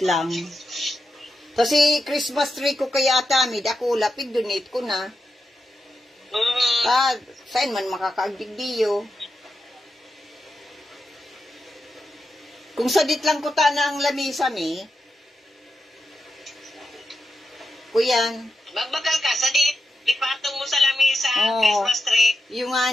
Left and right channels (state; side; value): normal; both; correlation 0.87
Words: lang. Kasi Christmas tree ko kaya atamid, ako lapig donate ko na. Saan man makakaagdigdiyo. Kung sa date lang ko na ang lamisa mi, kuyan. Magbakal ka sa dit. Ipatong mo sa lamisa, Oo. Christmas tree. Yung